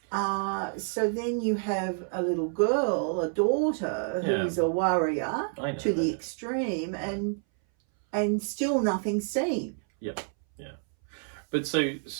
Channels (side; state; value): left; silent; 59 dB below the other